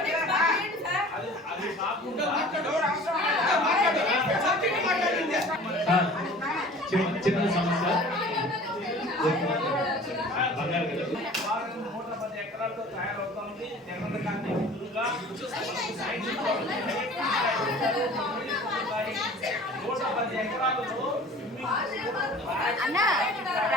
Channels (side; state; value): both; normal; correlation 0.45